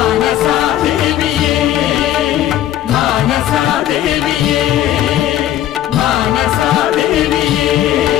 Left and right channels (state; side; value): quieter; right; 12.4 dB